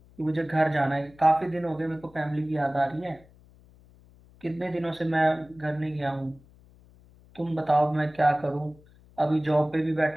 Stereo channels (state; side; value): noise; left; hum, 26 dB below the sound